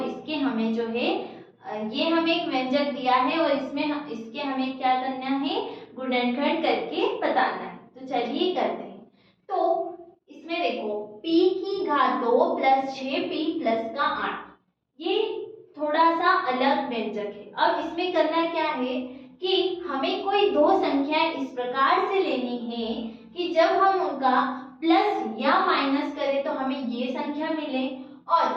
इसके हमें जो है ये हमें एक व्यंजक दिया है और इसके हमें क्या करना है, गुणनखंड करके बताना है। तो चलिए करते हैं। तो इसमें देखो p की घात 2 प्लस 6p प्लस का 8, ये थोड़ा सा अलग व्यंजक है। अब इसमें करना क्या है कि हमें कोई दो संख्याएं इस प्रकार से लेनी है कि जब हम उनका प्लस या माइनस करें तो हमें ये संख्या मिले और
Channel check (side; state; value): both; identical; correlation 1.00